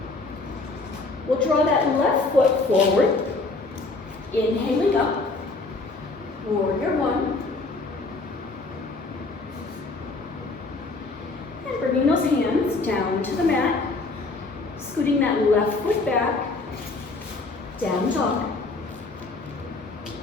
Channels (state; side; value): quieter; right; 3.5 dB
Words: We'll draw that left foot forward. Inhaling up. Warrior one. And bringing those hands down to the mat. Scooting that left foot back. Down dog.